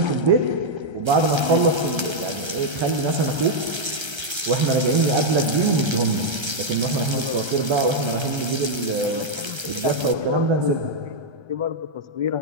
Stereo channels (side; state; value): left; late; 1.3 ms